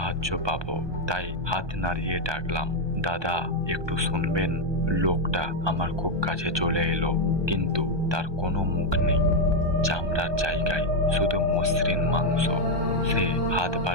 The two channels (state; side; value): late; left; 1.2 ms